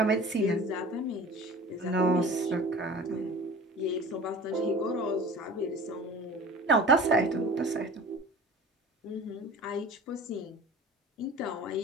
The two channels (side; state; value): both; normal; correlation 0.41